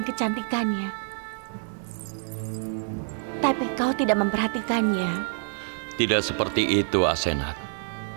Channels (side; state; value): left; silent; 60 dB below the other